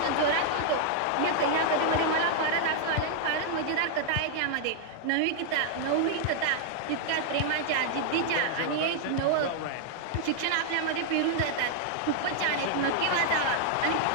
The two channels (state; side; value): different; both; correlation -0.01